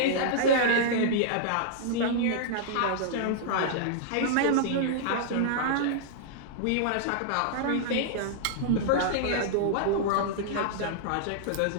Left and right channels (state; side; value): different; both; correlation -0.02